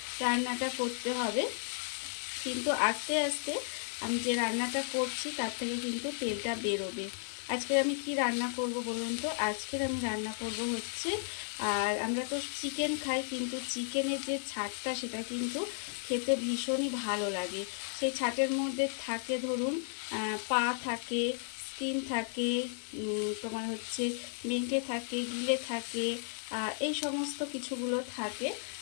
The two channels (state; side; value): silent; right; digital silence